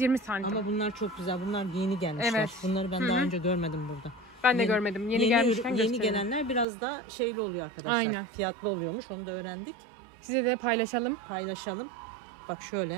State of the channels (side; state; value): left; drops out; at 6.7 s